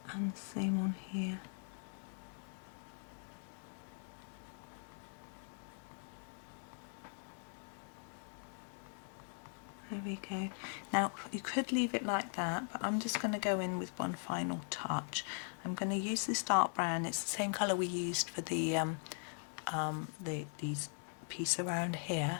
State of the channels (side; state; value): right; silent; 51 dB below the other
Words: And the same on here. There we go. Now you could leave it like that, but I'm just going to go in with one final touch. I'm going to use this dark brown. It's the same colour we used for the these piece around